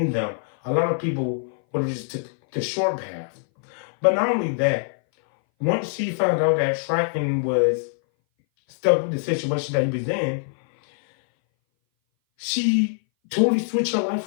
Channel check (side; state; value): right; silent; 59 dB below the other